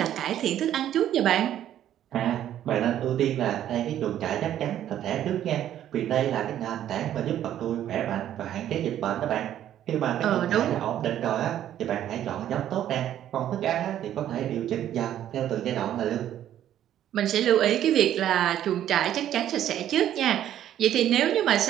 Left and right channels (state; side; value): quieter; left; 11.4 dB